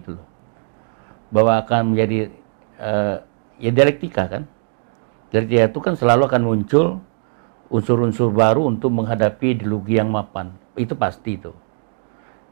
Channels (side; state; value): left; silent; 60 dB below the other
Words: loh. Bahwa akan menjadi ya dialektika kan. Dialektika itu kan selalu akan muncul unsur-unsur baru untuk menghadapi ideologi yang mapan. Itu pasti itu.